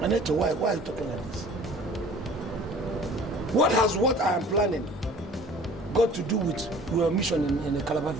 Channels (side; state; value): both; normal; correlation 0.48